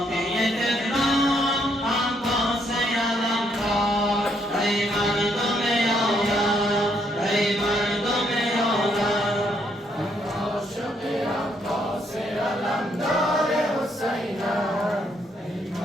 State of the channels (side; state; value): both; normal; correlation 0.72